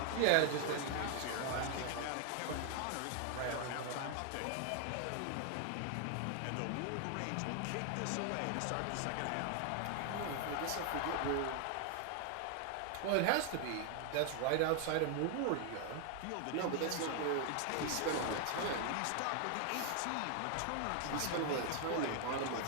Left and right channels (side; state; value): both; different; correlation 0.00